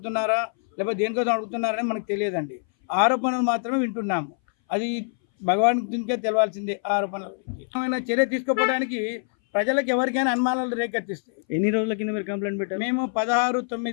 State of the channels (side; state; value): right; silent; 60 dB below the other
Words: లేకపోతే దేనికోసం అడుగుతున్నారని మనకు తెలియదండి. ఆరోపణలు మాత్రమే వింటున్నాము. అది భగవాన్కే తెలవాల్సిందే. ఆరోపణల గురించి ఏమైనా చర్య తీసుకోవడానికి ప్రజలకు ఎవరికైనా అనుమానాలు రేకెత్తిస్తాయి. ఎన్ని రోజుల కింద మీరు కంప్లైంట్ పెట్టారు? మేము